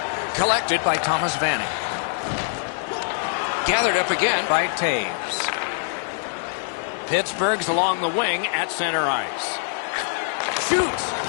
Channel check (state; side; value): silent; right; digital silence